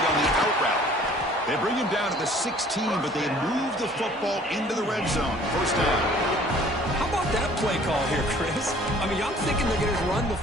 on the out route. They bring him down to the 16, but they move the football into the red zone. First down. How about that play call here, Chris? I mean, I'm thinking they're going to run the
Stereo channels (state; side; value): normal; both; correlation 0.53